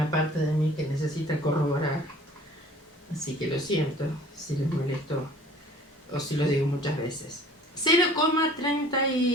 parte de mí que necesita corroborar. Así que lo siento si les molesto o si lo digo muchas veces.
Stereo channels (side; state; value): both; normal; correlation 0.50